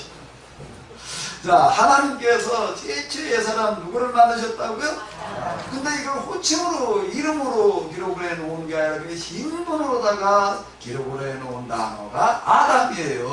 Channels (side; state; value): both; identical; correlation 1.00